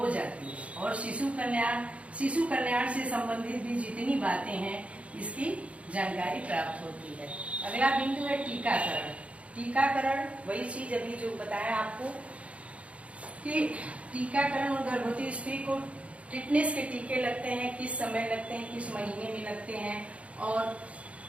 जाती है। और शिशु कल्याण से संबंधित भी जितनी बातें हैं इसकी जानकारी प्राप्त होती है। अगला बिंदु है टीकाकरण। टीकाकरण वही चीज अभी जो बताया आपको कि टीकाकरण और गर्भवती स्त्री को टिटनेस के टीके लगते हैं, किस समय लगते हैं, किस महीने में लगते हैं और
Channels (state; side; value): late; left; 0.063 ms